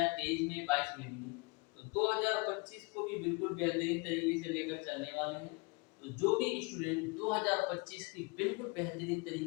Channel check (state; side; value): quieter; right; 28.9 dB